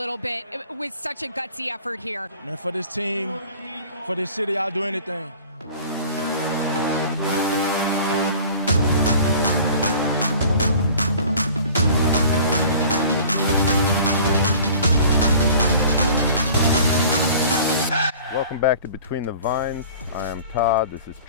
bit with such a gutsy effort here. Man, for this team, for this city, I'll do anything. Welcome back to Between the Vines. I am Todd, this is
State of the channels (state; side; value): inverted; both; correlation -0.46